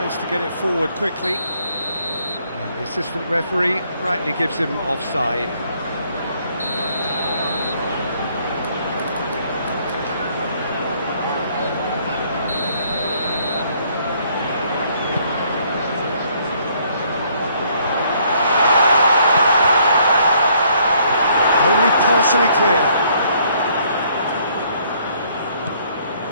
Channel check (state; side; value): inverted; both; correlation -0.66